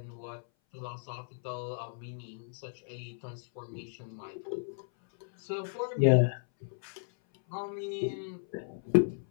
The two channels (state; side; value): silent; right; 55 dB below the other